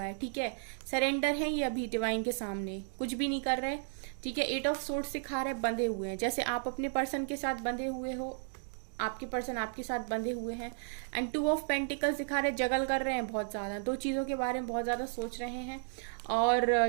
है, ठीक है। सरेंडर है ये अभी डिवाइन के सामने, कुछ भी नहीं कर रहे, ठीक है। 8 ऑफ सोर्ड्स सिखा रहे बंधे हुए हैं, जैसे आप अपने पर्सन के साथ बंधे हुए हो, आपके पर्सन आपके साथ बंधे हुए हैं। एंड 2 ऑफ पेंटिकल्स दिखा रहे जगल कर रहे हैं बहुत ज्यादा, दो चीजों के बारे में बहुत ज्यादा सोच रहे हैं। और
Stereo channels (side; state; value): left; silent; digital silence